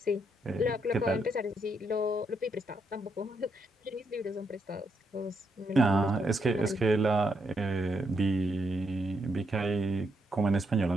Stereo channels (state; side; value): normal; both; correlation 0.78